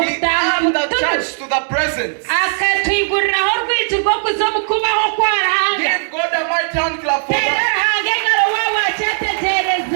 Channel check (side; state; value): left; silent; digital silence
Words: the church to the presence. Give God a a mighty hand clap for Terera that. hangengaro wawa